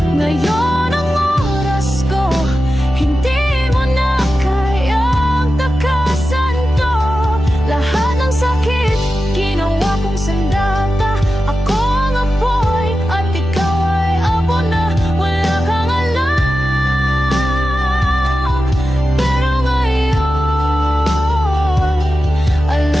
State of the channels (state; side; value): normal; both; correlation 0.92